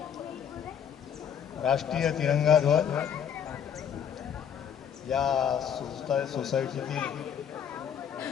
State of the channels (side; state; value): right; quieter; 8.4 dB